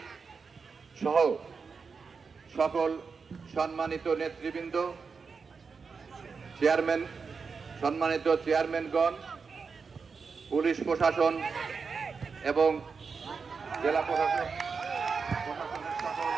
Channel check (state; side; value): quieter; left; 5.2 dB